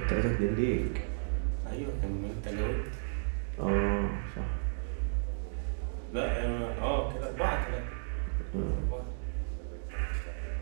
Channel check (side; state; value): left; silent; digital silence